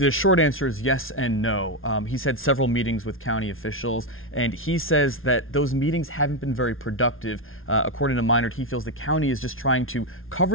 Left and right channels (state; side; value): late; right; 0.60 ms